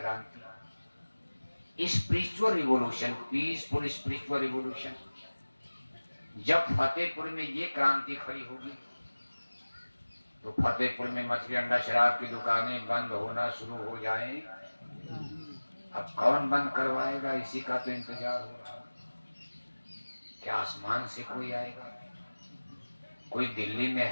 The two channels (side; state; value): both; inverted; correlation -1.00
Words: spiritual revolution, peaceful spiritual revolution. जब फतेहपुर में ये क्रांति खड़ी होगी तो फतेहपुर में मछली अंडा शराब की दुकानें बंद होना शुरू हो जाएं। अब कौन बंद करवाएगा, इसी का तो इंतजार हो रहा। क्या आसमान से कोई आएगा? कोई दिल्ली में